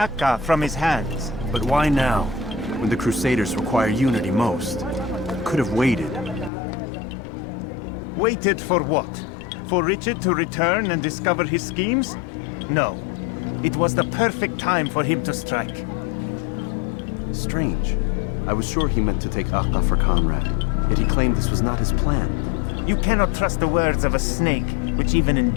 from his hands. But why now, when the Crusaders require unity most? Could have waited. Waited for what? For Richard to return and discover his schemes? No. It was the perfect time for him to strike. Strange. I was sure he meant to take Akka for Conrad, yet he claimed this was not his plan. You cannot trust the words of a snake, which even in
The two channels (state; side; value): drops out; right; at 6.5 s